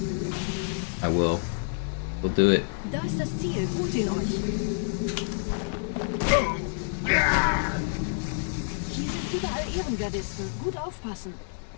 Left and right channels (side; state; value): right; silent; digital silence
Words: I will. We'll do it. Da ist das Ziel. Holt ihn euch. Hier sind überall Ehrengardisten. Gut aufpassen.